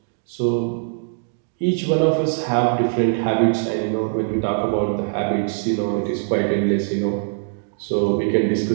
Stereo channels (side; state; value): left; silent; digital silence